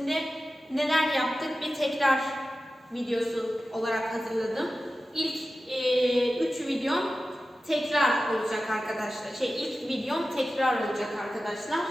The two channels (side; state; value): both; normal; correlation 0.94